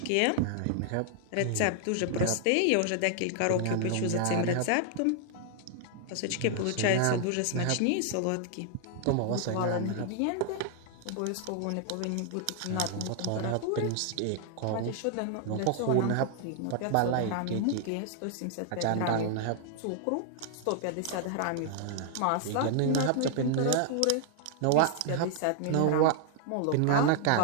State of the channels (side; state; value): both; different; correlation 0.00